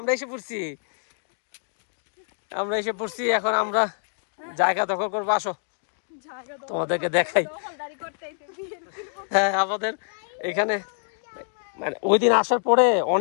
এসে পড়ছি, এখন আমরা জায়গা দখল করবো। আসো তোমাদেরকে দেখাই। হ্যাঁ, আমাদের এখানে মানে ওই দিন আসার পরে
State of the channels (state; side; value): silent; right; 61 dB below the other